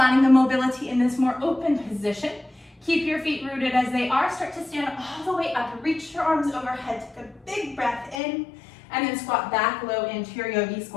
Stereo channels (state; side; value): drops out; right; at 8.2 s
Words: the mobility in this more open position. Keep your feet rooted as they are. Start to stand all the way up. Reach your arms overhead. Take a big breath in. And then squat back low into your yogi